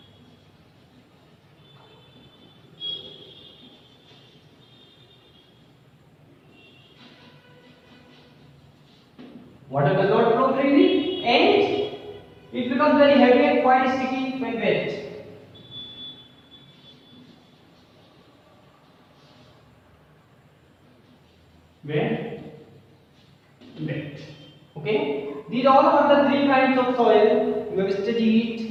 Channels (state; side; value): identical; both; correlation 1.00